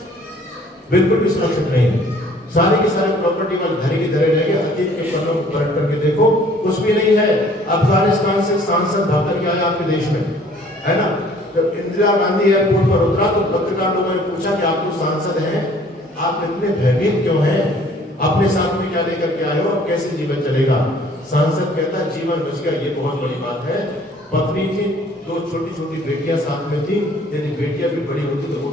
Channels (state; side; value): normal; both; correlation 0.56